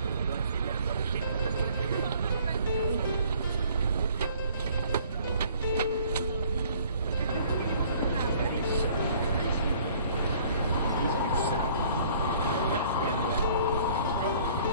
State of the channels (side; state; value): both; inverted; correlation -0.56